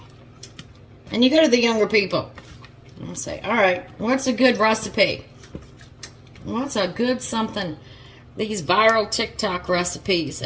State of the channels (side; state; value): both; identical; correlation 1.00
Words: And you go to the younger people. I'll say, alright, what's a good recipe? What's a good something? These viral TikTok recipes.